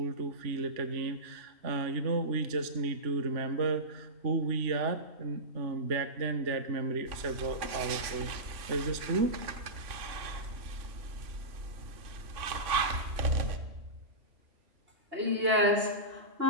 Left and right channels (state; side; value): late; left; 3.5 ms